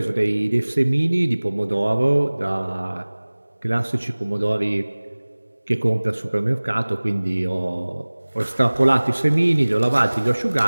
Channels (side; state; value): both; inverted; correlation -1.00